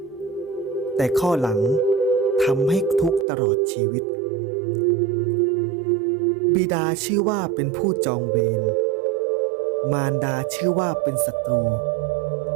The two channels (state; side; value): drops out; left; at 3.2 s